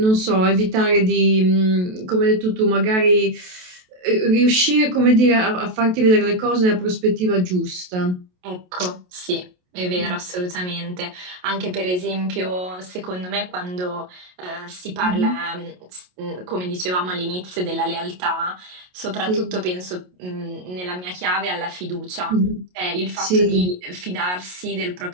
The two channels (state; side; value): late; left; 28 ms